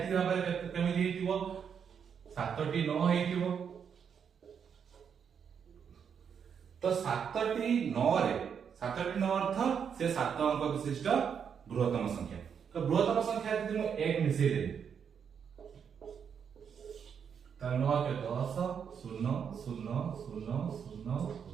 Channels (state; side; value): quieter; left; 7.3 dB